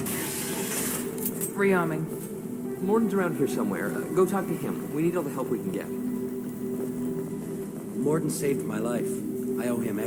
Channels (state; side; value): identical; both; correlation 1.00